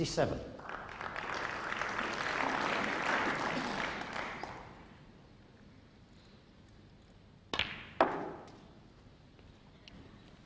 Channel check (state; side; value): identical; both; correlation 1.00